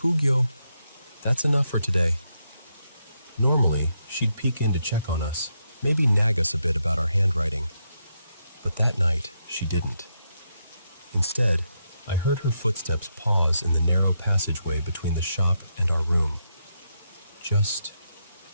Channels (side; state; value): both; inverted; correlation -0.81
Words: That's enough for today. Normally, she'd peek in to check on us, maybe nag us a bit about our handwriting. But that night, she didn't. Instead, I heard her footsteps pause in the narrow passageway between the shop and our room. Just